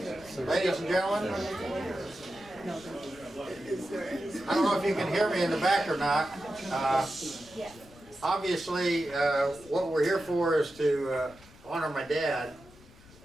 Ladies and gentlemen, I don't know if you can hear me in the back or not. Obviously, what we're here for is to honor my dad,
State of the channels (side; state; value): left; noise; rumble, 23 dB below the sound